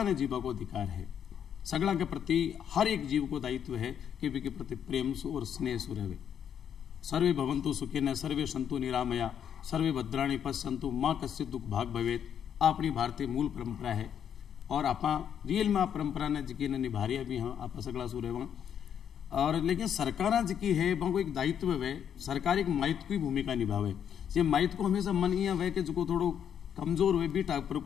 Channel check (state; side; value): quieter; right; 8.7 dB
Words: ने जीवा को अधिकार है। सगड़ा के प्रति हर एक जीव को दायित्व है कि वे के प्रति प्रेम और स्नेह से रहे। सर्वे भवन्तु सुखिनः सर्वे सन्तु निरामया सर्वे भद्राणि पश्यन्तु मां कश्चित् दुख भाग भवेत्। अपनी भारतीय मूल परंपरा है और आप रियल में परंपरा ने जिकी ने निभारिया भी हाँ आप सगड़ा सु रहे और लेकिन सरकार जिकी है वो एक दायित्व है। सरकार एक माइत की भूमिका निभावे। ये माइत को हमेशा मन ये है कि जो थोड़ो कमजोर हुए भी टाइप पर